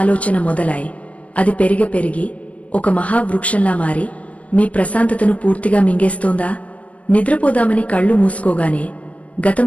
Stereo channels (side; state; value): right; late; 0.065 ms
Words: మొదలై అది పెరిగి ఒక మహావృక్షంలా మారి మీ ప్రశాంతతను పూర్తిగా మింగేస్తోందా? నిద్రపోదామని కళ్ళు మూసుకోగానే గతం